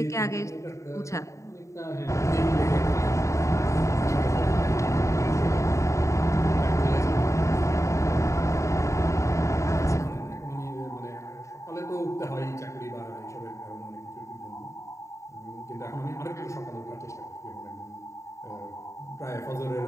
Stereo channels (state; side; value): late; right; 0.14 ms